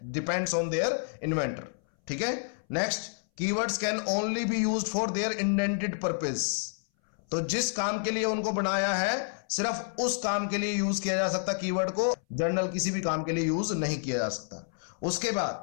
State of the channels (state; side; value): silent; right; 58 dB below the other